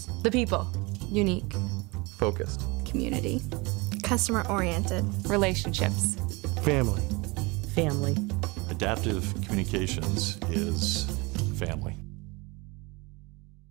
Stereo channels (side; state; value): left; quieter; 25.7 dB